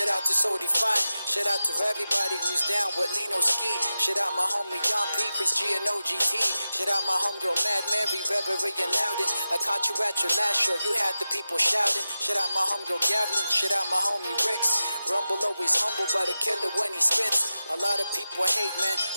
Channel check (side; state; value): both; inverted; correlation -0.93